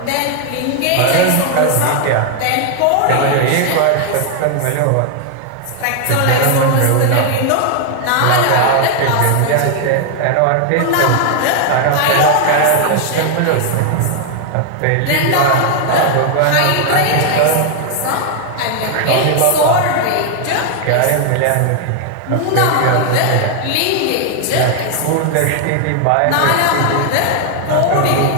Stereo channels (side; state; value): both; different; correlation 0.00